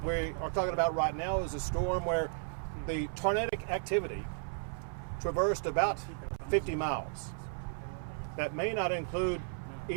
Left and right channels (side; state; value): left; silent; 55 dB below the other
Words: we are talking about right now is a storm where the tornadic activity traversed about 50 miles. That may not include